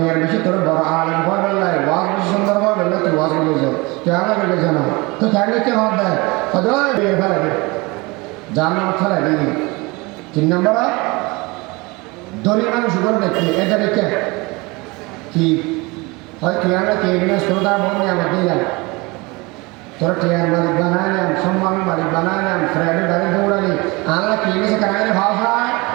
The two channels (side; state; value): left; quieter; 25.1 dB